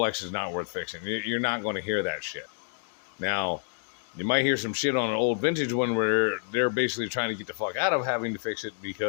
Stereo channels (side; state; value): right; silent; digital silence